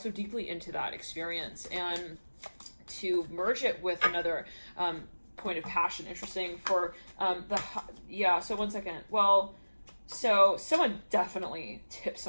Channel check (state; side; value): inverted; both; correlation -1.00